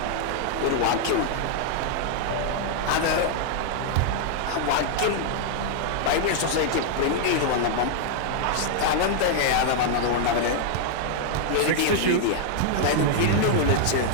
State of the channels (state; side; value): different; both; correlation -0.01